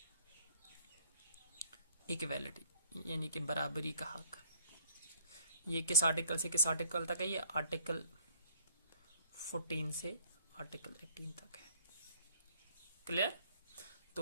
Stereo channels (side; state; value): both; inverted; correlation -0.59